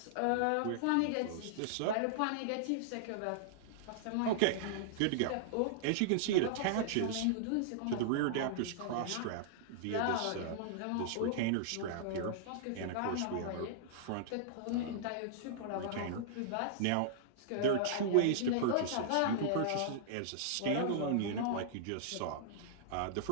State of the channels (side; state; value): both; different; correlation -0.01